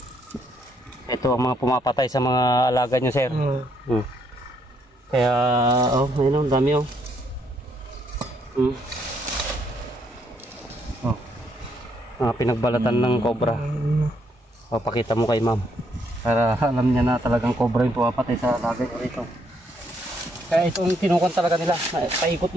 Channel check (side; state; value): both; normal; correlation 0.72